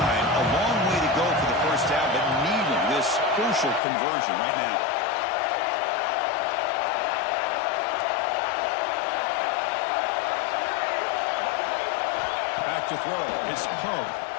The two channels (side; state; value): right; drops out; at 3.8 s